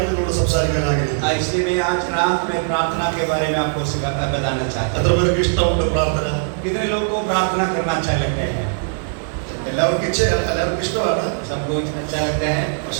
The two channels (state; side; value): silent; left; digital silence